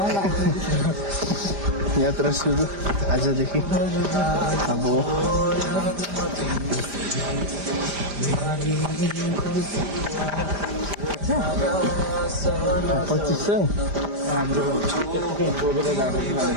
यात्रा सुरु आजदेखि अब 2500 हाम्रो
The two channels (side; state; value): left; late; 5.0 ms